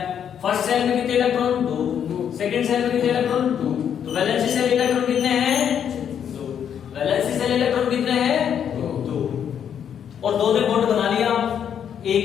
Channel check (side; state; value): right; quieter; 8.6 dB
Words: फर्स्ट सेल में कितने इलेक्ट्रॉन, 2। सेकंड सेल में कितने इलेक्ट्रॉन, 2। तो वैलेंसी सेल इलेक्ट्रॉन कितने हैं, 2। वैलेंसी सेल